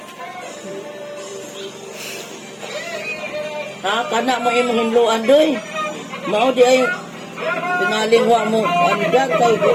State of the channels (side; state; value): both; identical; correlation 1.00